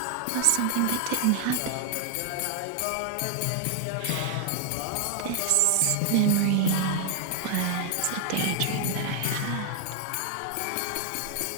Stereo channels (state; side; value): different; both; correlation 0.00